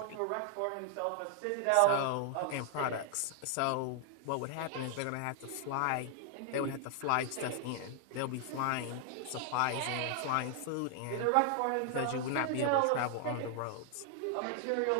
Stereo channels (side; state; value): both; different; correlation 0.00